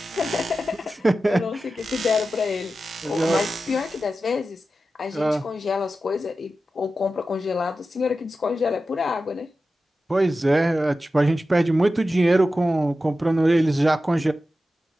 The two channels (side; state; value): both; normal; correlation 0.93